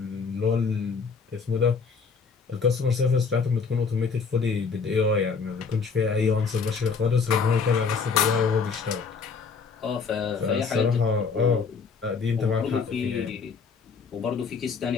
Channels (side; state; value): right; quieter; 5.3 dB